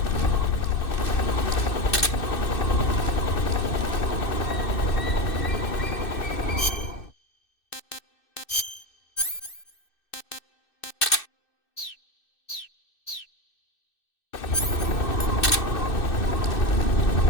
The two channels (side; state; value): right; late; 2.6 ms